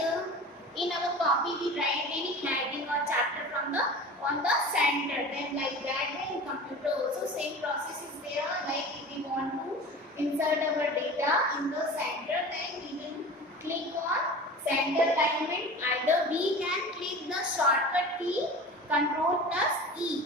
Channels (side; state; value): both; normal; correlation 0.36